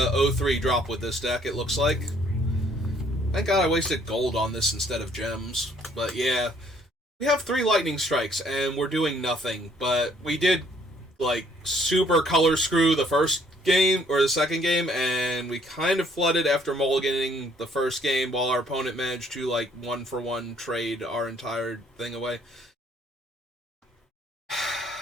drop with this deck, it looks like. Thank God I wasted gold on this instead of gems. But yeah, we have 3 lightning strikes, and we're doing nothing. But we did, like, super color screw the first game, or the second game, and we kind of flooded after mulliganing the first game while our opponent managed to, like, 1-for-1 trade our entire thing away.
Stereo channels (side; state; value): both; normal; correlation 0.64